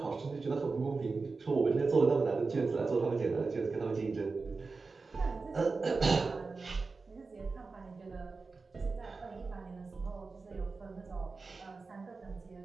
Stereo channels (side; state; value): left; quieter; 4.1 dB